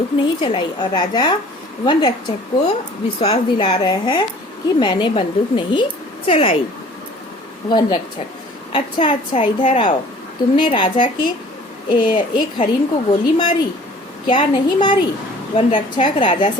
नहीं चलाई। और राजा वन रक्षक को विश्वास दिला रहे हैं कि मैंने बंदूक नहीं चलाई। वन रक्षक, अच्छा, इधर आओ। तुमने राजा के एक हरिन को गोली मारी क्या? नहीं मारी। वन रक्षक राजा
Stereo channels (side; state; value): both; normal; correlation 0.50